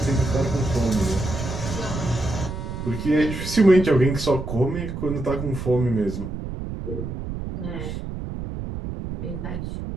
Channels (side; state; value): right; noise; rumble, 6 dB below the sound